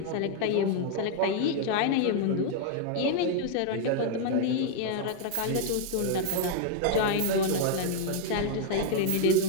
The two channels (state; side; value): different; both; correlation 0.00